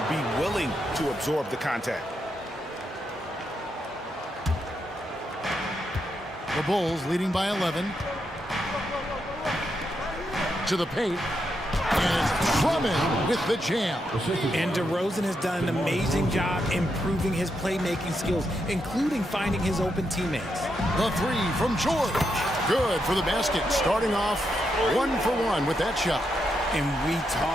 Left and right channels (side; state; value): both; normal; correlation 0.82